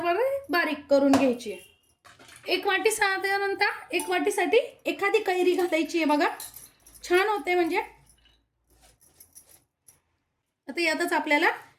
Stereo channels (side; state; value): both; identical; correlation 1.00